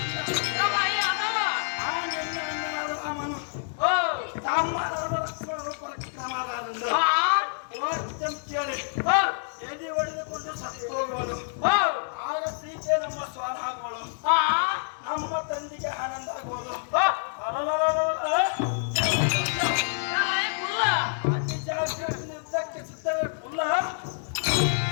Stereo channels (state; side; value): silent; right; digital silence